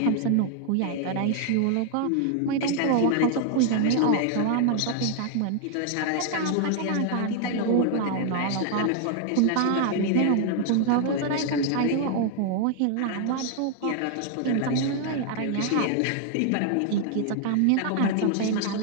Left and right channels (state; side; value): different; both; correlation 0.00